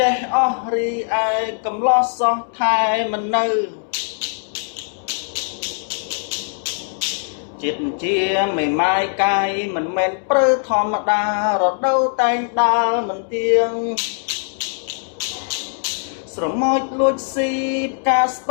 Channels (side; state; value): right; silent; 65 dB below the other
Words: េះអស់រីឯកំឡោះសោះថែមិននៅចិត្តជាមេម៉ាយកាយមិនមែនព្រឺធម្មតារដូវតែងដើរមិនទៀងស្រមោចលួចស៊ីផ្កាស្